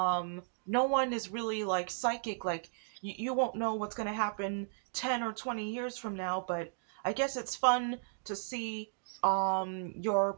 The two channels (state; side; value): silent; left; digital silence